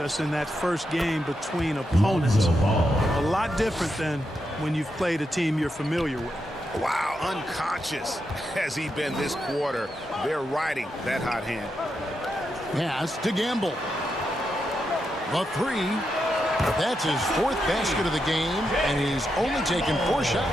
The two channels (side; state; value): both; normal; correlation 0.84